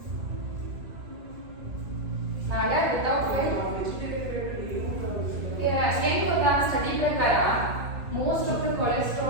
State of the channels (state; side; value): late; left; 2.5 ms